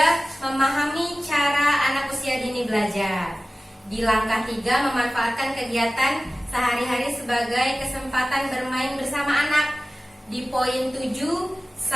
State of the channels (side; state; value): both; normal; correlation 0.97